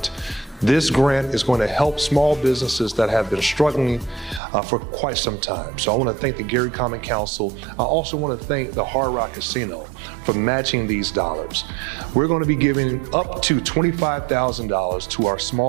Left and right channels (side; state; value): left; drops out; at 4.4 s